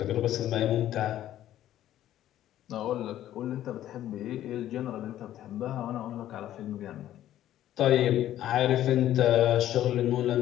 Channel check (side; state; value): right; quieter; 12.6 dB